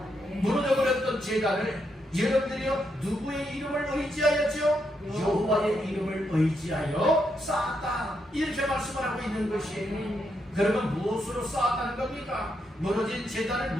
무너져버렸던 제단을 여러분들이요 누구의 이름을 의지하였죠? 여호와의 이름을 의지하여 쌓았다 이렇게 말씀을 하고 있는 것이에요. 그러면 무엇으로 쌓았다는 겁니까? 무너진 제단을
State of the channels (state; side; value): normal; both; correlation 0.80